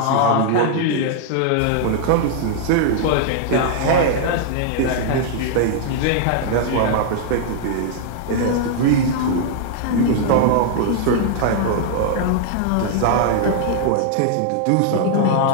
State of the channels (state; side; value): different; both; correlation 0.00